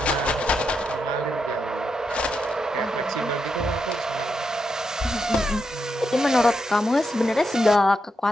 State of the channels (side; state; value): both; normal; correlation 0.84